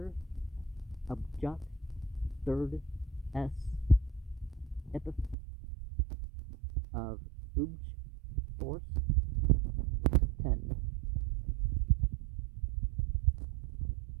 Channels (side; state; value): left; drops out; at 5.4 s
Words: Abjat, third S, epithet of Ubj, force, 10.